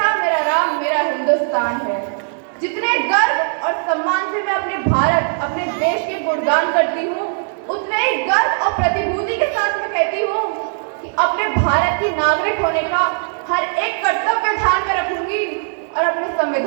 मेरा राम, मेरा हिंदुस्तान है। जितने गर्व और सम्मान से मैं अपने भारत, अपने देश के गुणगान करती हूँ, उतने ही गर्व और प्रतिभूति के साथ मैं कहती हूँ कि अपने भारत की नागरिक होने का हर एक कर्तव्य ध्यान में रखूंगी और अपने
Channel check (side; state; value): left; silent; digital silence